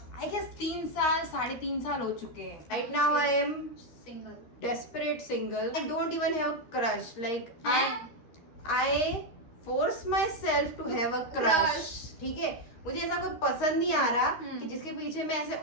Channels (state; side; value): late; right; 13 ms